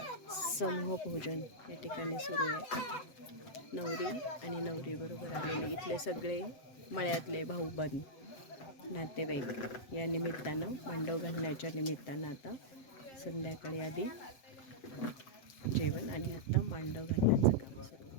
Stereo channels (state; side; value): late; right; 7.5 ms